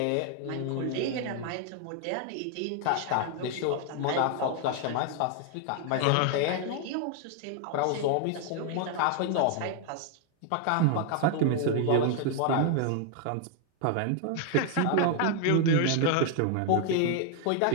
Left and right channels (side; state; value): both; different; correlation 0.00